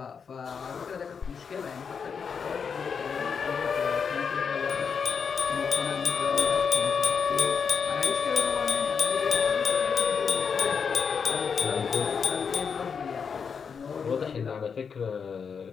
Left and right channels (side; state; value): right; quieter; 6.2 dB